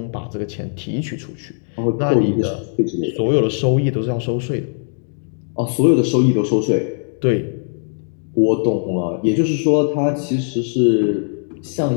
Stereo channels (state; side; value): silent; right; digital silence